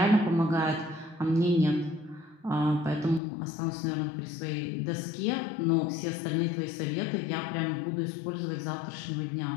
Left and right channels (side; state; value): right; drops out; at 3.2 s